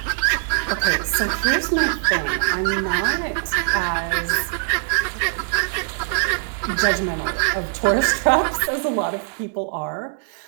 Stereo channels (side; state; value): left; silent; 59 dB below the other